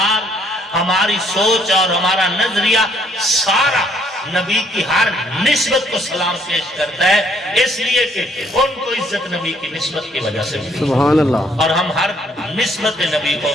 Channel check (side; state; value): both; normal; correlation 0.66